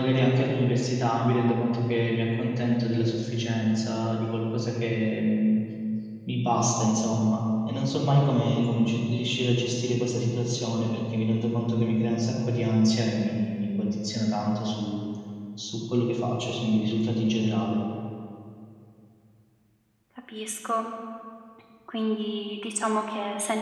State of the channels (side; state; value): both; identical; correlation 1.00